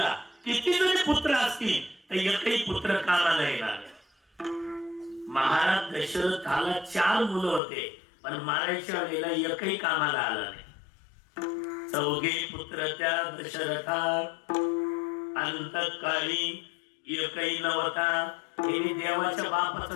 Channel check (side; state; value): right; drops out; at 7.6 s